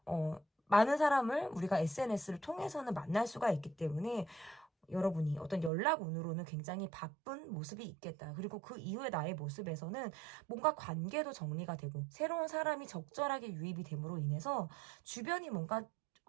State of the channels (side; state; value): left; drops out; at 5.7 s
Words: 많은 사람을 우리가 SNS를 통해서는 만날 수가 있기 때문에 여러분이 어떤 연락 운으로는 굉장히 바쁜 모습이 있겠다. 그리고 그 이후에 나의 모습에서는 뭔가 관계도 정리가 되고 새로운 사람이 적절하게 유입이 됨으로 인해서 주변이 뭔가